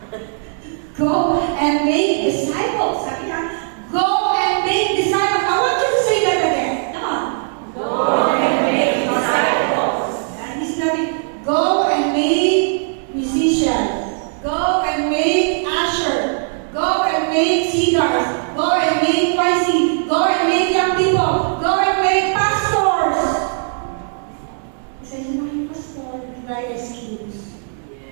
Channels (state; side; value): silent; left; digital silence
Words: Go and make disciples. Sabi na, go and make disciples. I want you to say that again. Come on. Go and make disciples. Hindi sinabi, go and make musicians. Go and make usher. Go and make singers. Go and make YC. Go and make young people. Go and make pastors. Isa yun na yung pastor, not excuse.